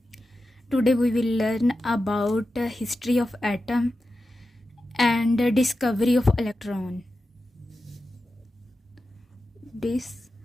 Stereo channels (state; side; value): normal; both; correlation 0.92